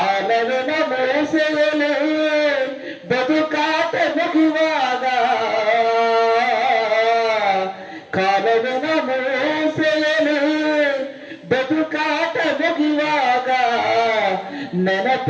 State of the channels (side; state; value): both; identical; correlation 1.00